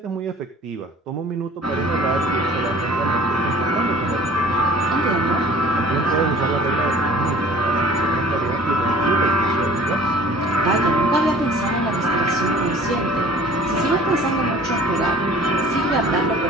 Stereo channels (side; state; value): both; normal; correlation 0.48